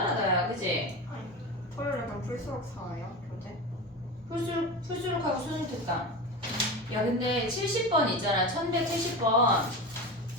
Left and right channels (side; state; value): both; normal; correlation 0.26